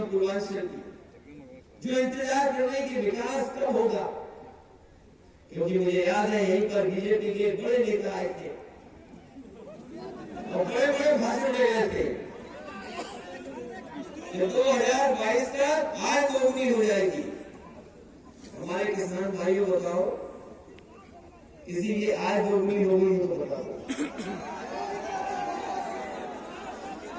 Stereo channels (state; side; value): identical; both; correlation 1.00